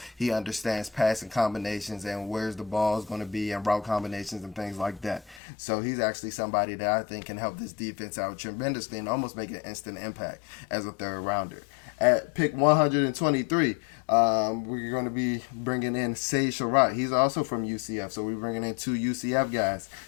he understands passing combinations and where's the ball is going to be and route combinations and things like that. So he's actually somebody that I think can help this defense out tremendously and almost make an instant impact as a third rounder. At pick 123, we're going to be bringing in Sage Surratt. He's also from UCF, so we're bringing in 2 UCF guys.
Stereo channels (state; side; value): drops out; right; at 5.4 s